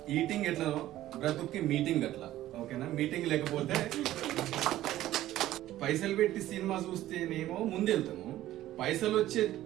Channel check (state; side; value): quieter; left; 14.2 dB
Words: ఈటింగ్ ఎట్లనో బ్రతుక్కి మీటింగ్ అట్లా. ఓకేనా? మీటింగ్ లేకపోతే పైసలు పెట్టి సినిమా చూస్తేనేమో ముందు వెళ్తాము, పైసలు వచ్చే